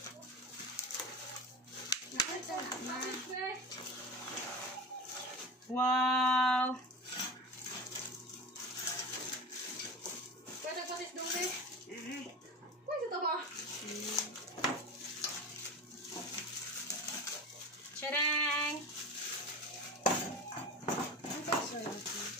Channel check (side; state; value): both; normal; correlation 0.30